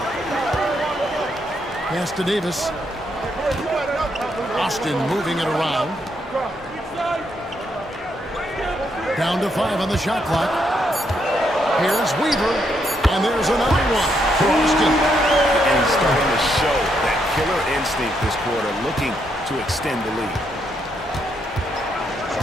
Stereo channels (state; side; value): normal; both; correlation 0.77